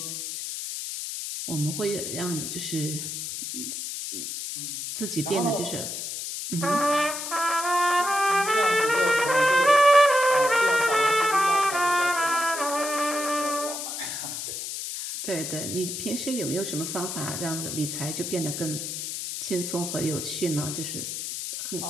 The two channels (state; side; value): noise; left; hiss, 5 dB below the sound